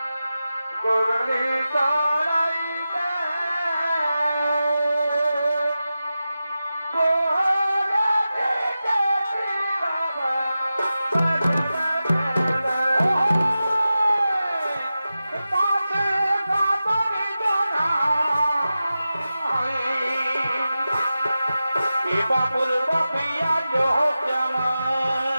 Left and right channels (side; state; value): both; inverted; correlation -0.93